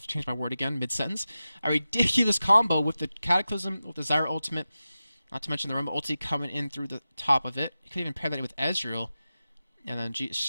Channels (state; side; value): inverted; both; correlation -0.94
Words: to change my word again mid-sentence, a ridiculous combo with the Cataclysm, with the Zyra ultimate, not to mention the Rumble ulti coming in through the top of it. You could even pair that with Ezreal, and then, you